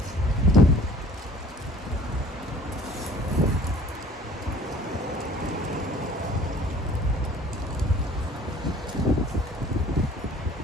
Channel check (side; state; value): both; normal; correlation 0.51